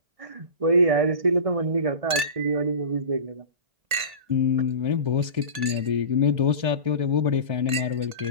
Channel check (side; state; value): left; late; 1.8 ms